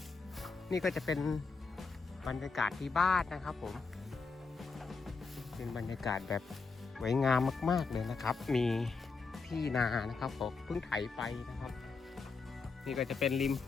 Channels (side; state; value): right; quieter; 4.5 dB